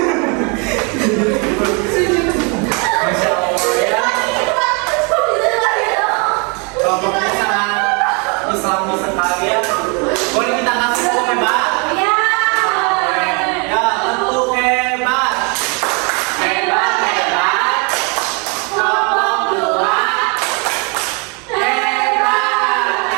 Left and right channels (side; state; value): left; quieter; 33.4 dB